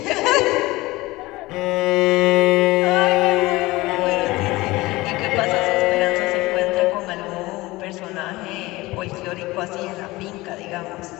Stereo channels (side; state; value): right; quieter; 20.3 dB